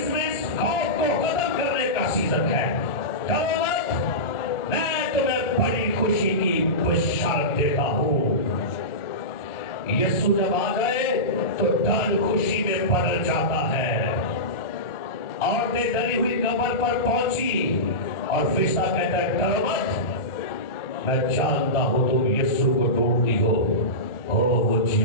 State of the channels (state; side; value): late; right; 1.4 ms